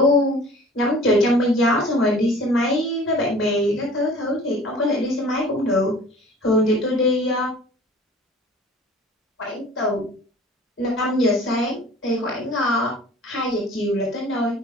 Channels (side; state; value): both; normal; correlation 0.47